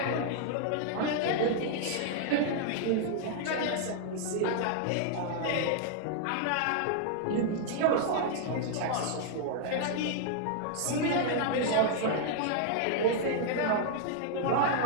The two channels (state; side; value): different; both; correlation -0.01